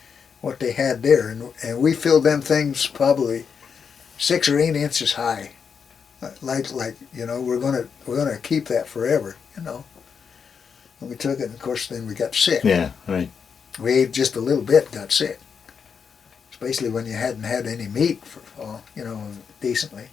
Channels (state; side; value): quieter; right; 6.4 dB